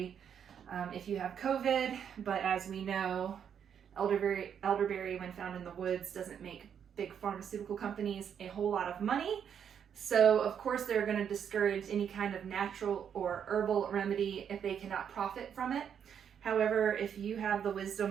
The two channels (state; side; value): quieter; left; 8.2 dB